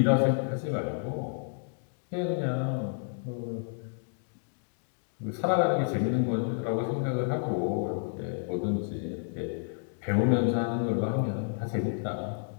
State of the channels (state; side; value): silent; right; digital silence